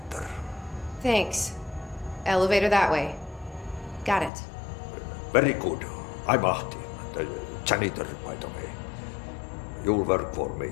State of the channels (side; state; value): right; drops out; at 4.3 s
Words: Thanks. Elevator that way. Got it. Very good. I'm Ahti, the janitor, by the way. You'll work for me.